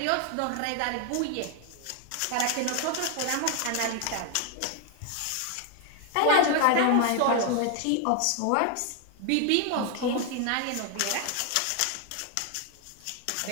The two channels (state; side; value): different; both; correlation 0.01